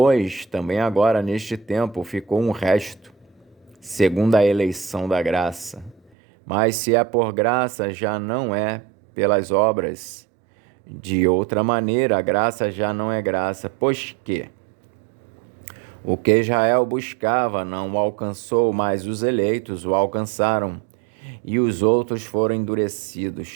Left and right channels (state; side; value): drops out; left; at 6.1 s